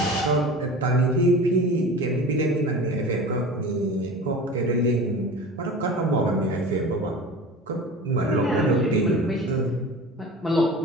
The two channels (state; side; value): normal; both; correlation 0.35